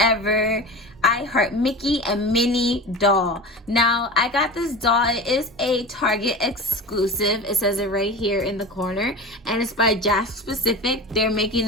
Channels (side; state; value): both; normal; correlation 0.31